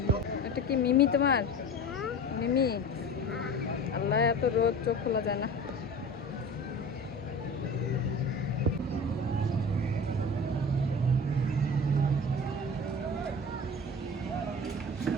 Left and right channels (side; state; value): both; normal; correlation 0.35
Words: এটা কি মিমি তোমার? মিমি। আল্লাহ, এত রোদ চোখ খোলা যায় না।